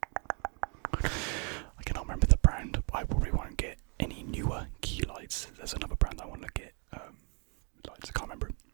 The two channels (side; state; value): left; quieter; 37.5 dB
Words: I cannot remember the brand. I probably won't get any newer key lights. There's another brand I want to get lights. I can't remember it.